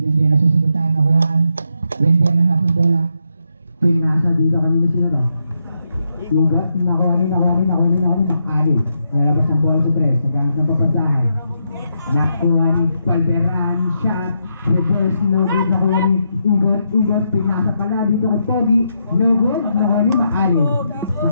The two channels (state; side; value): inverted; both; correlation -0.80